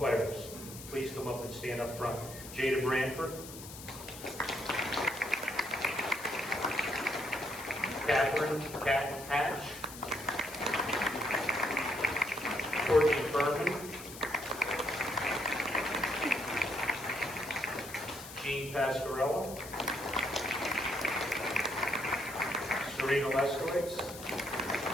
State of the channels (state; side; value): noise; left; hiss, 13 dB below the sound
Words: please come up and stand up front. Jada Branford. Catherine Hatch. Courtney Furman. Jean Pasquarello. Serena Leskowitz.